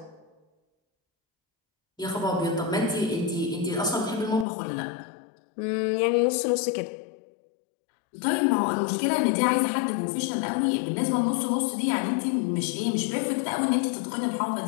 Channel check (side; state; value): right; drops out; at 4.5 s